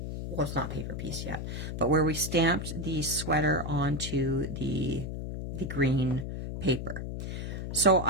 well, it's not paper piece yet, but where we stamped the sweater onto the green paper. So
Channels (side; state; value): left; noise; hum, 5 dB below the sound